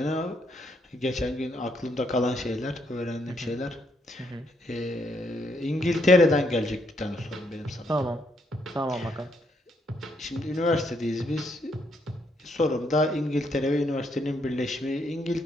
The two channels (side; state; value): both; normal; correlation 0.74